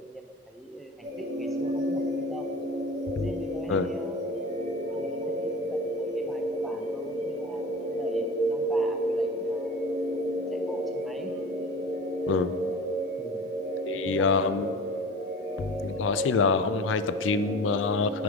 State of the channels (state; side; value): normal; both; correlation 0.35